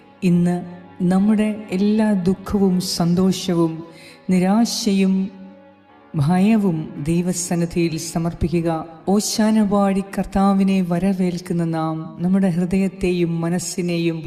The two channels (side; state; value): both; identical; correlation 1.00